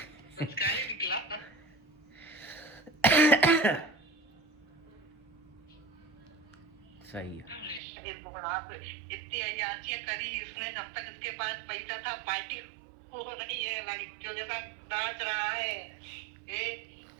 संस्कार ही निकला। सही है। इतनी अयाचियां करी इसने, जब तक इसके पास पैसा था। पार्टी हो रही है, लड़कियों के साथ नाच रहा है ये।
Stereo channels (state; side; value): drops out; left; at 7.8 s